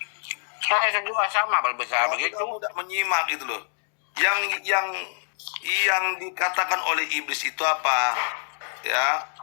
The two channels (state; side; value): silent; right; digital silence